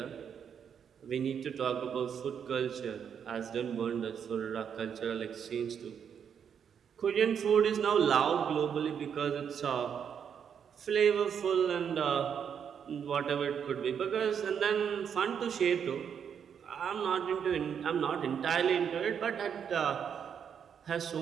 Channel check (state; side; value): quieter; left; 7.7 dB